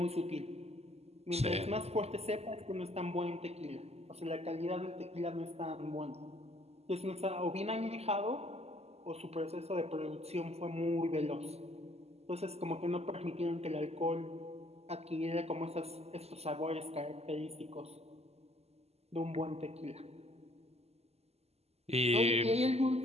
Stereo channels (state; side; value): late; left; 0.30 ms